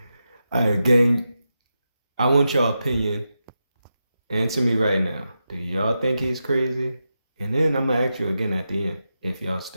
Gang, I want your opinion. Answer me right now. Do y'all think he's crazy? And then I'm gonna ask you again at the end if y'all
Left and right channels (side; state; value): both; inverted; correlation -0.89